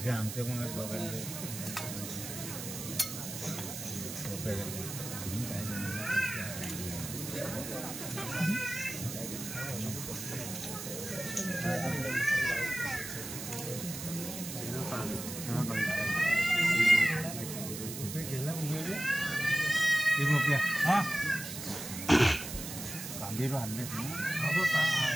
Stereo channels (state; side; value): noise; right; hiss, 8 dB below the sound